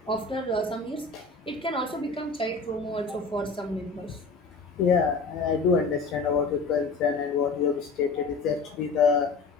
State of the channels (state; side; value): quieter; right; 4.2 dB